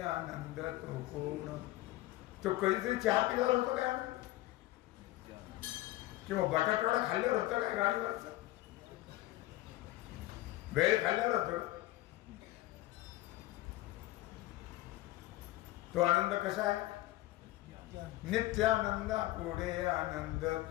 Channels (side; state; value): right; quieter; 17.1 dB